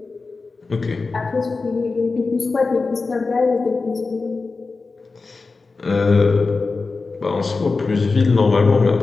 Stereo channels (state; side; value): quieter; right; 4.0 dB